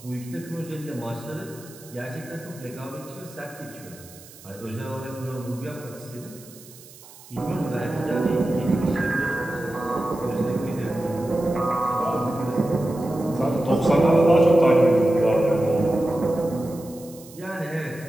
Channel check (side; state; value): right; noise; hiss, 20 dB below the sound